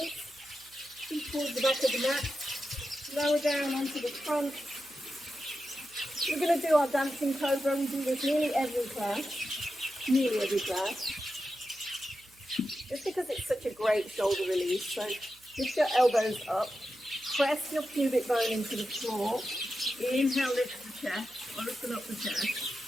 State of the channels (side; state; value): right; noise; hum, 29 dB below the sound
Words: Feet towards the back of the mat, lower down onto the front. We're going to do our dancing cobra. We do this nearly every class. Just because it's such a great shoulder release. So lift your elbows up, press your pubic bone into the floor. Inhale, lift the chest, open up the chest.